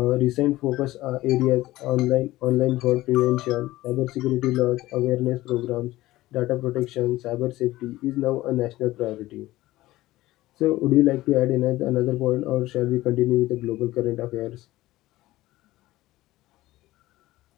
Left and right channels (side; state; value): right; quieter; 17.2 dB